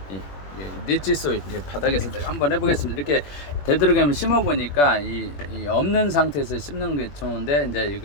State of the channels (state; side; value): late; right; 21 ms